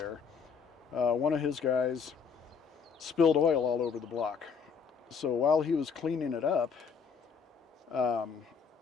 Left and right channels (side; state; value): right; quieter; 6.0 dB